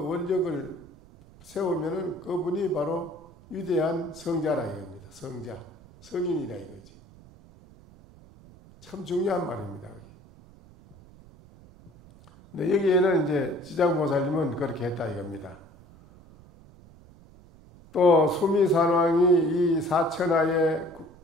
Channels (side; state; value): right; noise; rumble, 24 dB below the sound